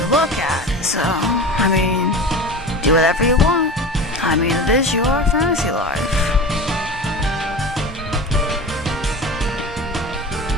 look at, so I mean, do whatever you want. I mean, it is your fantasy life.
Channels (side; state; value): both; normal; correlation 0.32